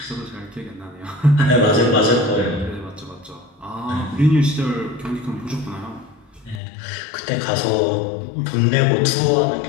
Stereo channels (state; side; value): drops out; right; at 6.6 s